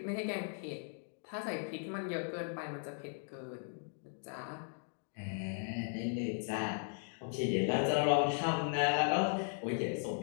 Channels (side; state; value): right; silent; 53 dB below the other